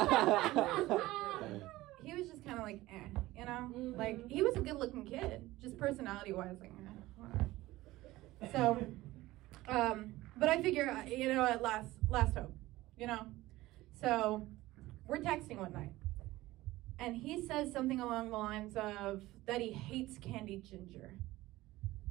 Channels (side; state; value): left; quieter; 17.8 dB